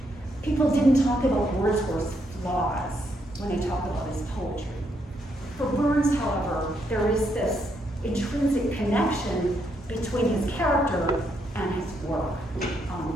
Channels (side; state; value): both; normal; correlation 0.76